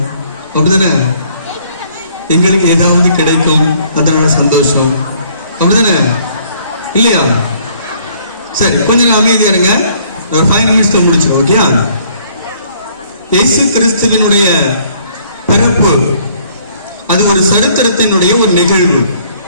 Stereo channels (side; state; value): both; inverted; correlation -0.62